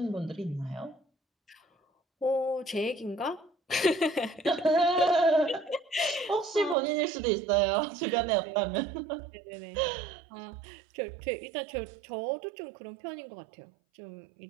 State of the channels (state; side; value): drops out; left; at 6.8 s